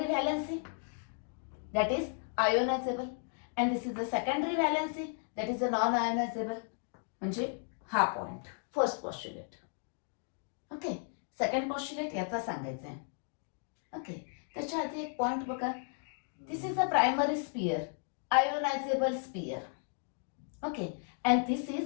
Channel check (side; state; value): right; silent; 55 dB below the other